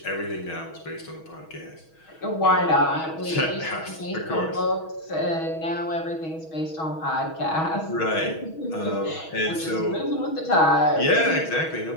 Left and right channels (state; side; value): late; right; 6.2 ms